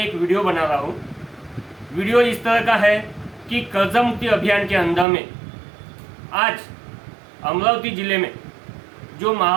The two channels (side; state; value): left; drops out; at 5.1 s